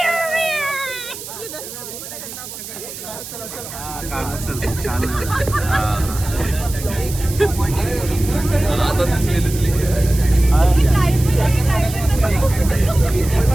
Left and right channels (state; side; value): noise; right; hiss, 11 dB below the sound